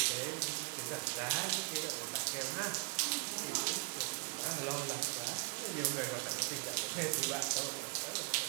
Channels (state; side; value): quieter; left; 36.9 dB